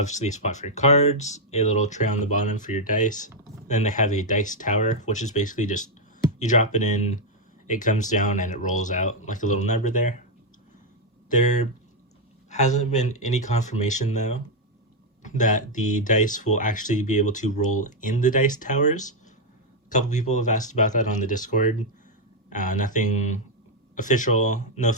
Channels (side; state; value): both; normal; correlation 0.00